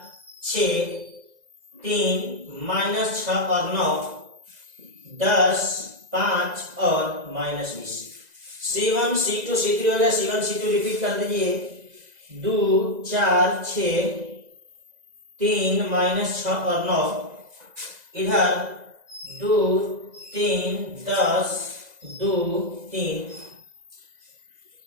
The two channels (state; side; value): late; left; 2.0 ms